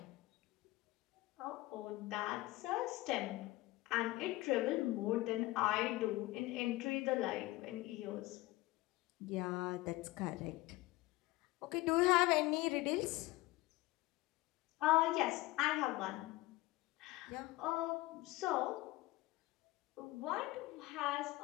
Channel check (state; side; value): quieter; right; 19.2 dB